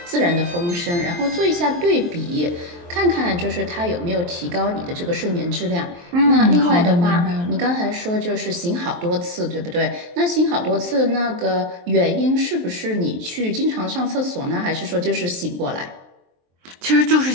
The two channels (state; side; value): late; left; 23 ms